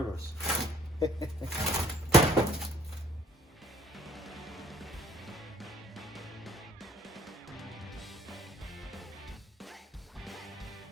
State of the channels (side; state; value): both; normal; correlation 0.57